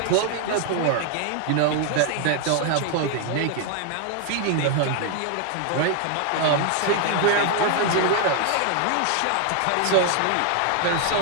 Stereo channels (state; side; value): different; both; correlation 0.00